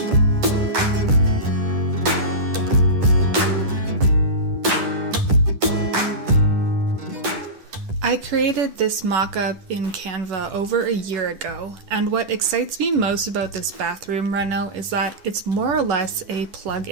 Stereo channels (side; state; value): left; late; 10 ms